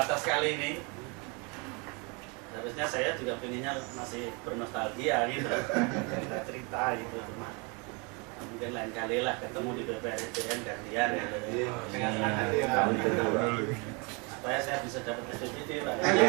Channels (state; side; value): quieter; left; 30.9 dB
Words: kali ini. Harusnya saya juga pengennya masih bernostalgia gitu, cerita gitu, cuma mungkin lain kali lah ketemu di BPSDN gantian gitu. Dengan senang hati supaya saya bisa dapat SPPD Pak.